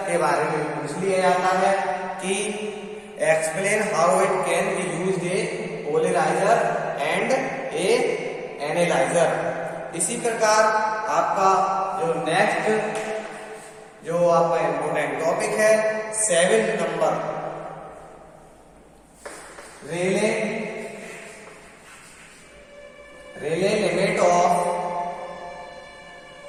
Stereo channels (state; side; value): identical; both; correlation 1.00